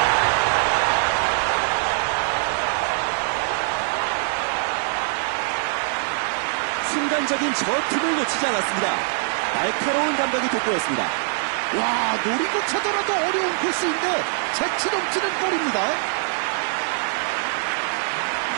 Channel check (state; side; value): silent; left; 63 dB below the other